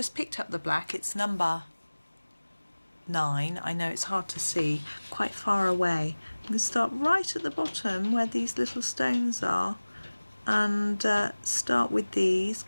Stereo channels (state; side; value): inverted; both; correlation -1.00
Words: picked up the black, it's number 9. I know it's hard to see, quite far away. I'm going to start right at the bottom where these little stones are, and start with these,